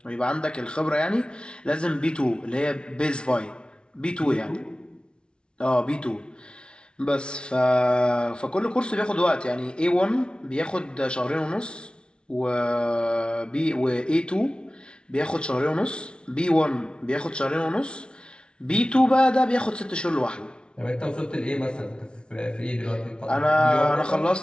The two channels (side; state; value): right; late; 0.056 ms